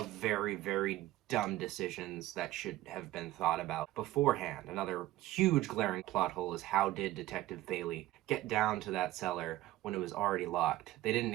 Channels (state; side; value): quieter; left; 16.2 dB